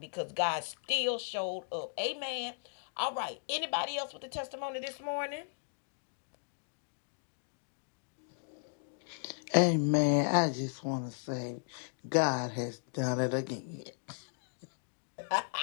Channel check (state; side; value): silent; right; digital silence